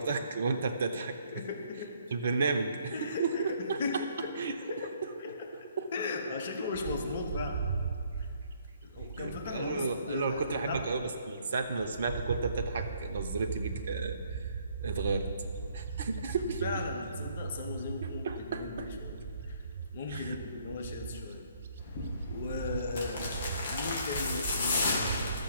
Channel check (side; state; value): both; inverted; correlation -0.65